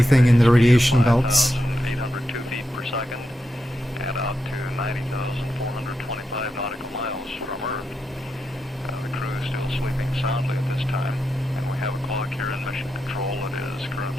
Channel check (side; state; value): both; normal; correlation 0.86